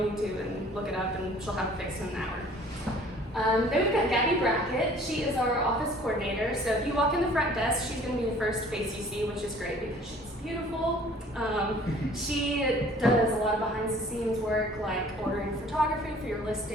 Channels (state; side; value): normal; both; correlation 0.52